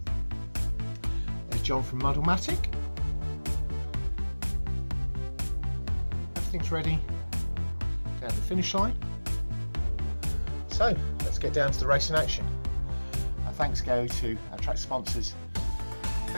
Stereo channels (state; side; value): inverted; both; correlation -1.00